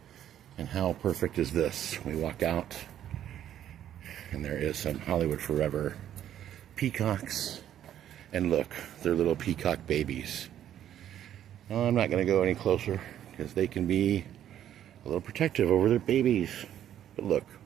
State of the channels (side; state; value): left; quieter; 10.9 dB